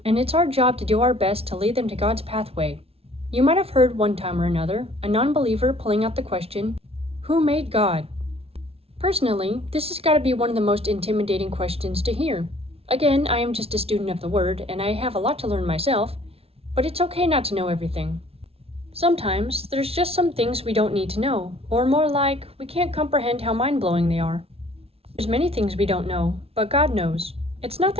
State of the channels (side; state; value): left; late; 0.29 ms